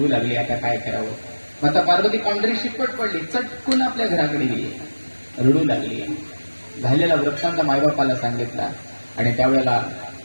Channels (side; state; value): both; inverted; correlation -1.00